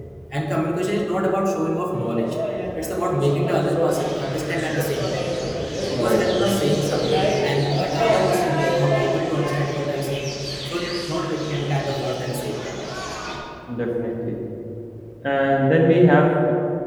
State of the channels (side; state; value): both; identical; correlation 1.00